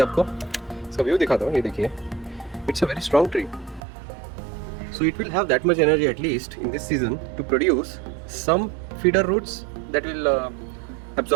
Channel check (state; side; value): drops out; left; at 3.8 s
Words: आपको इसका व्यू दिखाता हूँ. ये देखिए, it's a very strong tree. So it will have that much energy at least in this season to produce some feeder roots that will